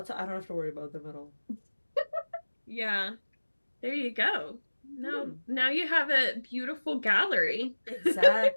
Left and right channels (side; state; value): both; inverted; correlation -1.00